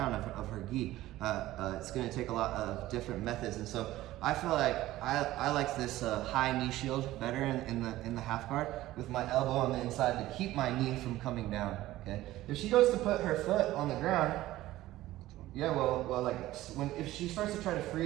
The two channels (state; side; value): quieter; left; 15.8 dB